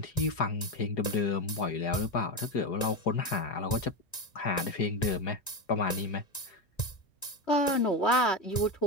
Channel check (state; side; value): normal; both; correlation 0.15